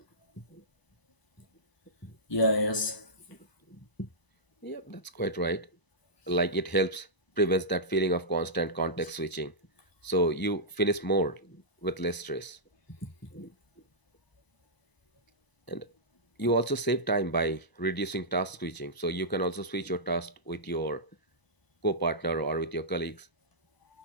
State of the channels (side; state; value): right; late; 1.0 ms